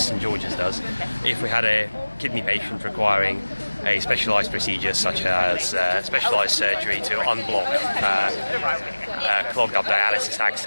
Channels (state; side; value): inverted; both; correlation -1.00